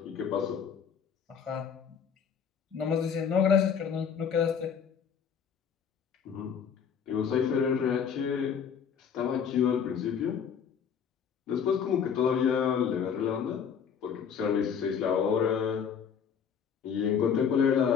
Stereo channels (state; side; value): quieter; right; 7.3 dB